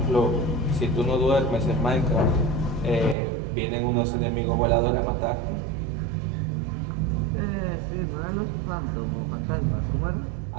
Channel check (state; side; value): drops out; left; at 3.2 s